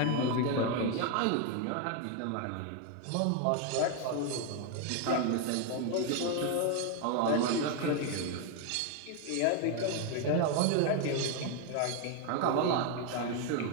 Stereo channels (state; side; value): different; both; correlation 0.01